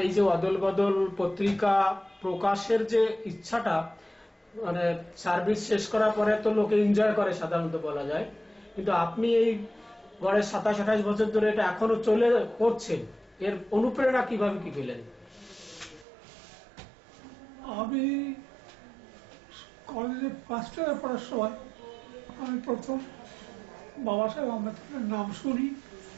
এই যে অদল বদল পত্রিকা প্রকাশের যে ইচ্ছাটা, মানে সার্ভিস শেষ করার পরে তো লোকে এনজয় করে সাধারণত বলা যায়, কিন্তু আপনি এই গড়ে 27-28 বছর ধরে এটা এখনো চলে করছেন, এর অনুপ্রেরণা কিভাবে কি পেলেন? আমি কলেজে ফার্স্ট ইয়ারে পড়ার সময় আমি প্রথম বাবা সাহেব আম্বেদকরের নাম শুনি,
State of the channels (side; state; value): left; drops out; at 16.1 s